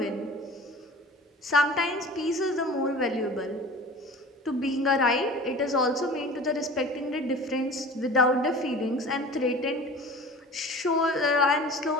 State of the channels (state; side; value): normal; both; correlation 0.40